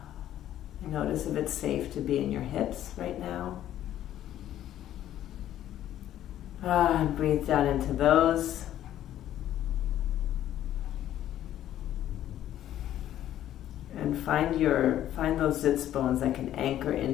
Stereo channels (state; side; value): quieter; right; 12.1 dB